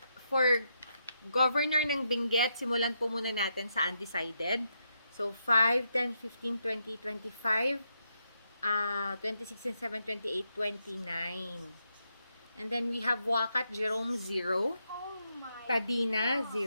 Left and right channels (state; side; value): inverted; both; correlation -0.81